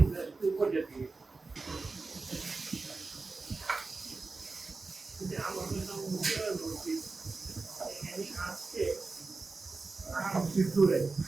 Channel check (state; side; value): quieter; left; 3.9 dB